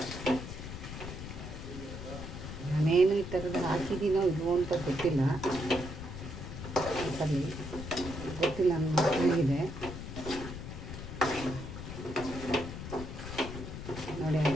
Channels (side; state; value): left; noise; rumble, 8 dB below the sound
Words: ನಾನೇನು ಈ ಥರದ್ದು ಹಾಕಿದ್ದೀನೋ ಇಲ್ವೋ ಅಂತ ಗೊತ್ತಿಲ್ಲ. ಸರಿ, ಗೊತ್ತಿಲ್ಲ, ನನ್ನ ಮಕ್ಕಳಿಗಿದೆ. ನೋಡಿ,